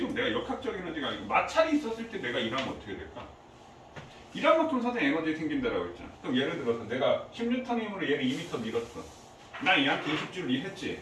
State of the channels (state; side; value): identical; both; correlation 1.00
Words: 내가 역학적 에너지가 아니고 마찰이 있었을 때 내가 일하면 어떻게 될까? 일한 만큼 사대 에너지 생긴다라고 했잖아. 그럼 예를 들어서 내가 10N 힘으로 얘를 2m 밀었어. 난 얘한테 20줄